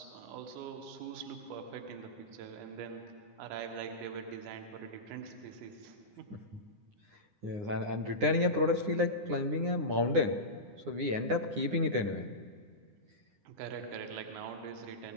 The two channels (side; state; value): left; late; 9.7 ms